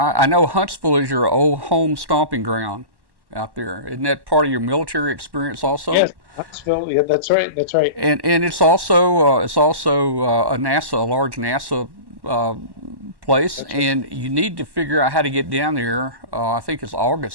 I know Huntsville is your old home stomping ground out there. Isn't that part of your military experience also? Yes, Huntsville. Yeah, that's right. That's right. And it's also a large NASA place, right. And you need to figure out how to get down there. I think it's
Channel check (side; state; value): left; late; 1.1 ms